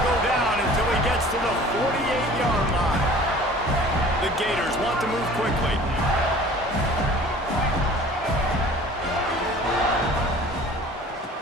go down until he gets to the 48-yard line. The Gators want to move quickly.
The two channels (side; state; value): both; normal; correlation 0.47